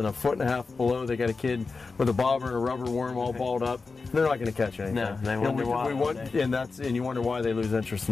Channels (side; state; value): right; quieter; 4.2 dB